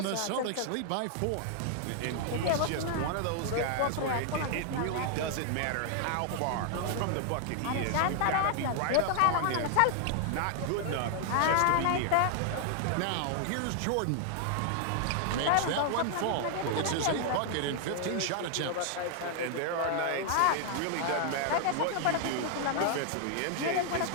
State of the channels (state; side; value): different; both; correlation 0.00